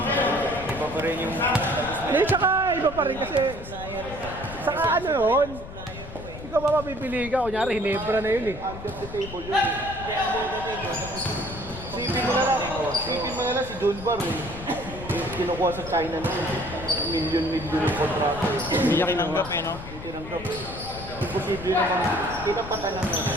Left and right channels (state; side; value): noise; left; rumble, 12 dB below the sound